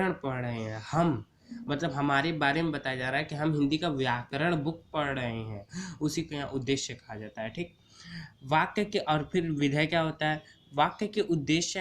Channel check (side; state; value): both; identical; correlation 1.00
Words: पढ़ रहे हैं। हम मतलब हमारे बारे में बताया जा रहा है कि हम हिंदी का व्याकरण बुक पढ़ रहे हैं, उसी को यहाँ उद्देश्य कहा जाता है। ठीक, वाक्य के और फिर विधेय क्या होता है? वाक्य के